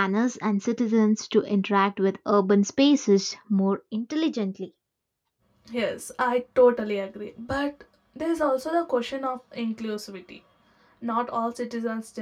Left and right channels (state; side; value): identical; both; correlation 1.00